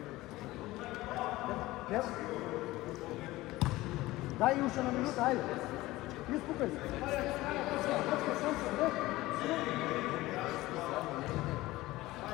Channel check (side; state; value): right; quieter; 18.3 dB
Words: Дай уши на минута, айде. Изпукай се.